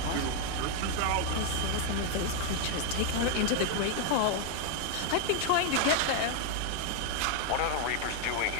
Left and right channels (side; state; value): both; different; correlation 0.00